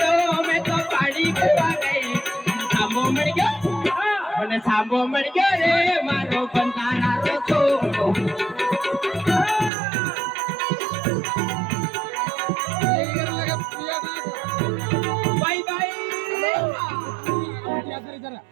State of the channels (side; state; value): left; drops out; at 9.7 s